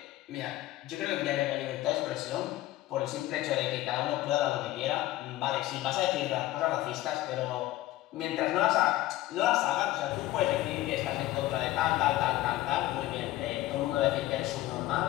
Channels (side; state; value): right; quieter; 15.9 dB